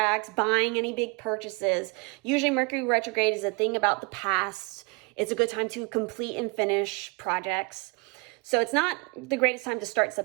buying any big purchases. Usually Mercury retrograde is a thing about the past. It's a good time to complete and finish projects. So it's not the greatest time to start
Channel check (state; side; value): quieter; left; 29.3 dB